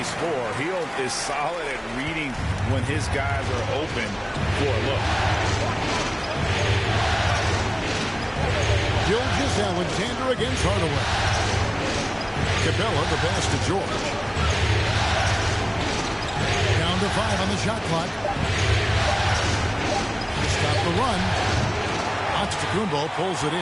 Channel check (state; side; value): identical; both; correlation 1.00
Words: score. Hield is solid at reading when his guys are open for a look. Gilgeous-Alexander against Hardaway. Capella, the pass to George. Down to 5 on the shot clock. To stop the run. Antetokounmpo pulls it